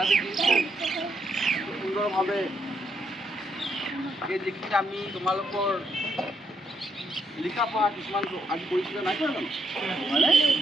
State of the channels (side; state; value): both; normal; correlation 0.77